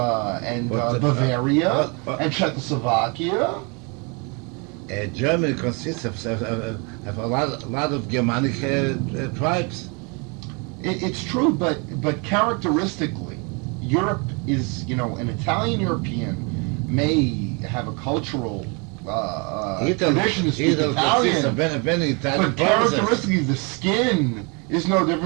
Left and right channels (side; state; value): left; quieter; 32.3 dB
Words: Bavaria but- and Czechoslovakia. Germany consists of a lot of Germanic tribes. It's true, but characteristically, Europe is, an Italian European may have a cultural tradition to speak Italy consists of Italian, many Italian but provinces. characteristically, the skin is no